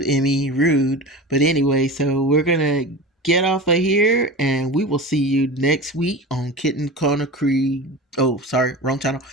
Emmy, rude. But anyway, so we're gonna get off of here, and we will see you next week on Kitten Corner Creed. Oh, sorry, wrong channel.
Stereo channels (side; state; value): both; normal; correlation 0.31